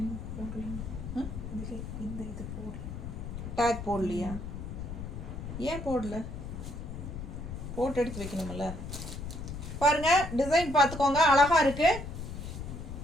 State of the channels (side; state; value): left; noise; rumble, 8 dB below the sound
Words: இந்த இது போடல, டேக் போடலையா? ஏன் போடல? போட்டு எடுத்து வைக்கணும்ல. பாருங்க, டிசைன் பார்த்துக்கோங்க, அழகா இருக்கு.